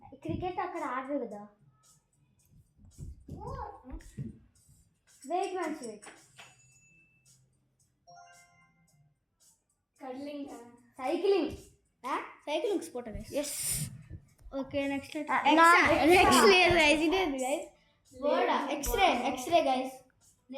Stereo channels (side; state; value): both; identical; correlation 1.00